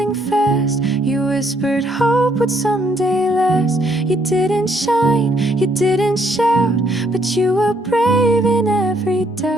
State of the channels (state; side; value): normal; both; correlation 0.69